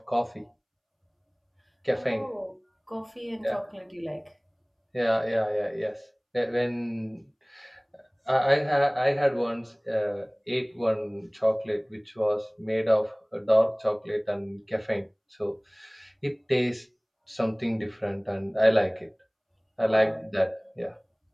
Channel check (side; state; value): both; identical; correlation 1.00